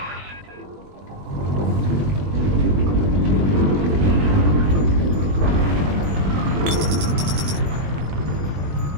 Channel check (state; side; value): late; left; 21 ms